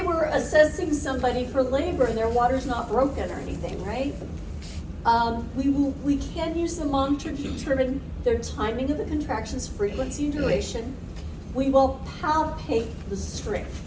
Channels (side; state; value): both; identical; correlation 1.00